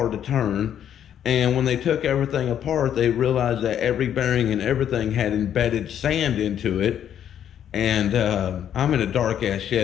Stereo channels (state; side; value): quieter; right; 9.8 dB